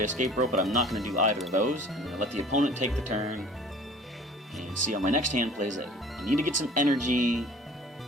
Escape Rope, but I'm not going to do either of those. I'm going to let the opponent take the turn, and see how my next hand plays it. I need to get some energy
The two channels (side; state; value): both; normal; correlation 0.48